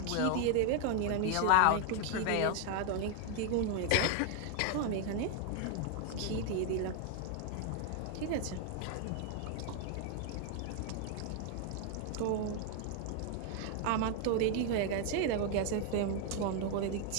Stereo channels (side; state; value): both; different; correlation 0.00